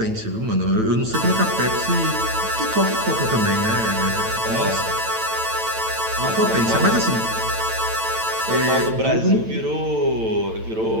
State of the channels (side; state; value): left; late; 9.0 ms